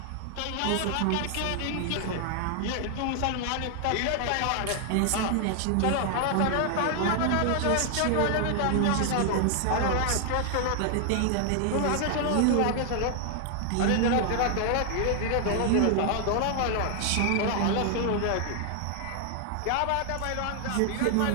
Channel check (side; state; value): both; different; correlation 0.00